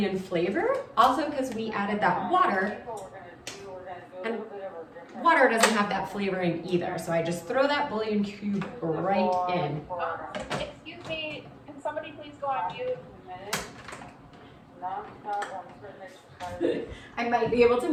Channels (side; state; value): both; identical; correlation 1.00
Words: flavor, also because we added that water, and water doesn't have that flavoring either. So I just throw that bouillon cube right in. Excuse me, can somebody please go on mute? I might be able to